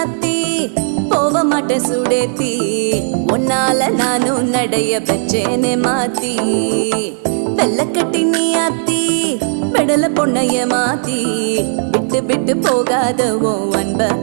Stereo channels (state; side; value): silent; left; digital silence